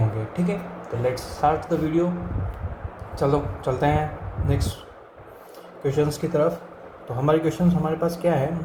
ठीक है, तो लेट्स स्टार्ट द वीडियो. चलो चलते हैं नेक्स्ट क्वेश्चंस की तरफ. तो हमारे क्वेश्चंस हमारे पास क्या है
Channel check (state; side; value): identical; both; correlation 1.00